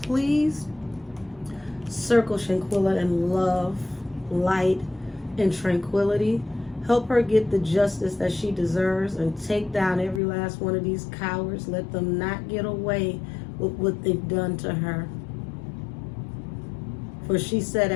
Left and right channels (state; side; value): drops out; right; at 10.2 s